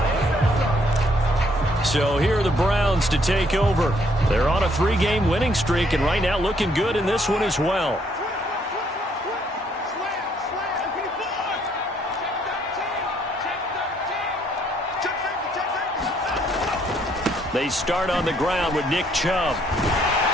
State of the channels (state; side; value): normal; both; correlation 0.68